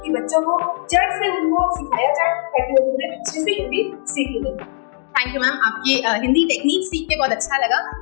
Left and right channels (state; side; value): silent; right; digital silence